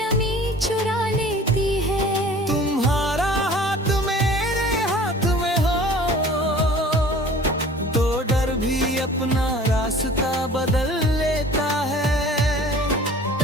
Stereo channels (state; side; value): normal; both; correlation 0.46